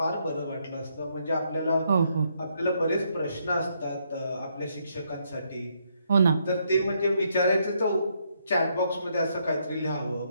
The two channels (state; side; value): inverted; both; correlation -0.74